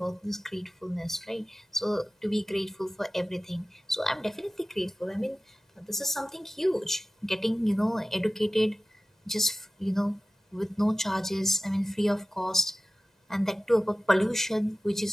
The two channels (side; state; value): both; normal; correlation 0.96